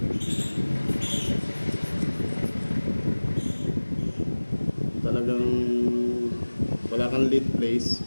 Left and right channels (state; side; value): inverted; both; correlation -1.00